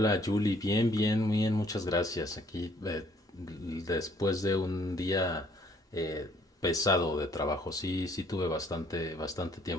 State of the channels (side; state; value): both; normal; correlation 0.62